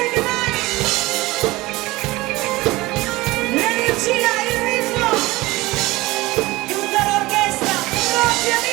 di mai! L'energia, il ritmo! Tutta l'orchestra! Pronti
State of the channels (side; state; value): left; quieter; 20.1 dB